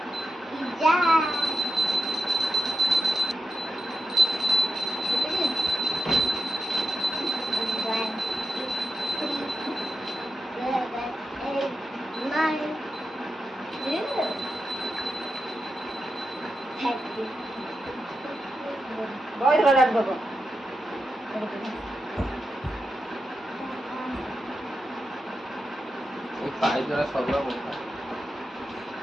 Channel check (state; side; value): normal; both; correlation 0.89